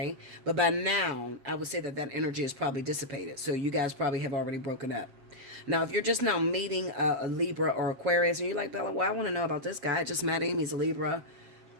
But by now, I would say that that energy is probably dissipated. So you guys probably have already broken up. Now, if you're just now meeting a Libra or Aquarius, and you're like, Bella, well, I want to know about this guy. I just met him. He's a Libra,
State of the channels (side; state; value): left; late; 7.5 ms